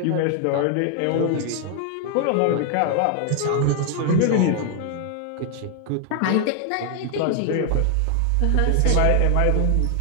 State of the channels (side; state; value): both; different; correlation 0.00